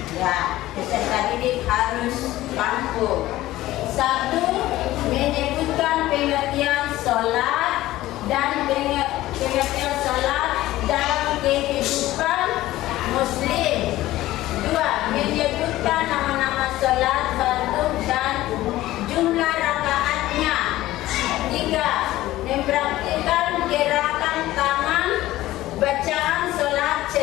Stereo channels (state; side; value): quieter; right; 16.0 dB